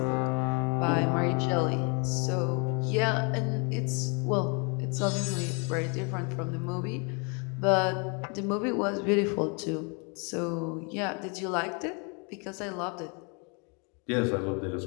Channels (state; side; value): quieter; right; 34.4 dB